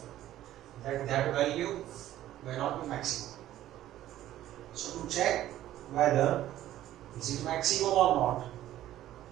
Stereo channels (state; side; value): quieter; left; 13.3 dB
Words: that that value may not be maximum. So to check whether is it maximum or not,